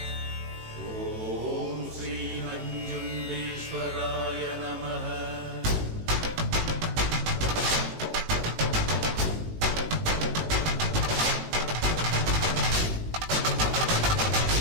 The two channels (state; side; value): late; left; 18 ms